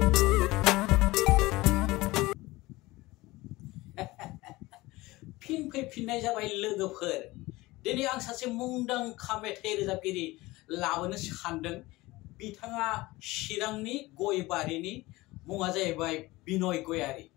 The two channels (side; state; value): right; quieter; 20.2 dB